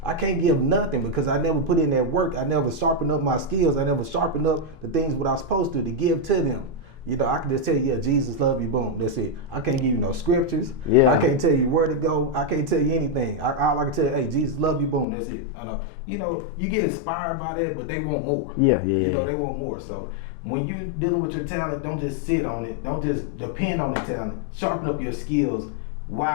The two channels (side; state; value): right; drops out; at 15.1 s